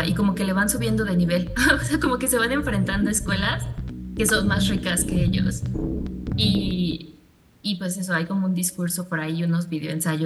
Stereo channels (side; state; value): both; identical; correlation 1.00